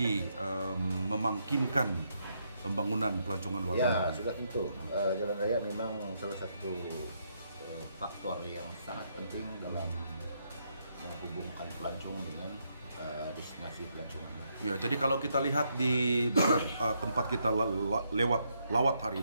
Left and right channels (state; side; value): inverted; both; correlation -0.77